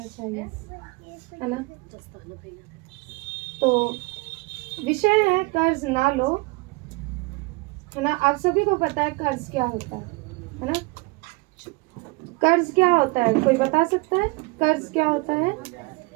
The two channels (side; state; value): left; quieter; 26.0 dB